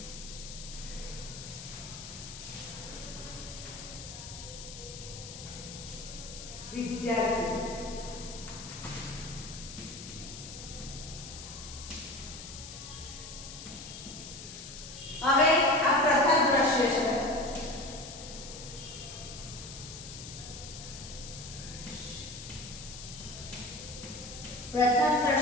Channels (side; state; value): left; noise; hiss, 11 dB below the sound